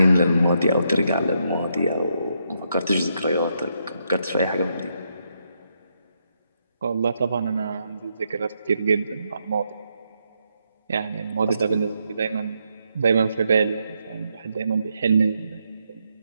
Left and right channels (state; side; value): inverted; both; correlation -0.79